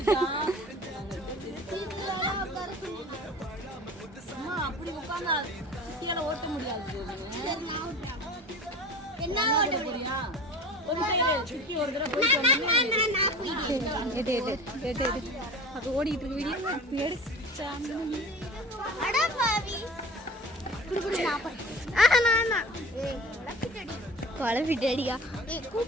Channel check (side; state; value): both; normal; correlation 0.38